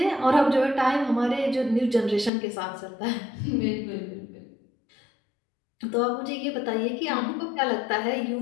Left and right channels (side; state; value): right; drops out; at 2.3 s